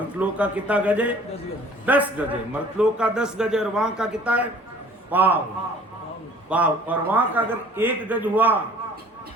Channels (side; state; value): both; normal; correlation 0.52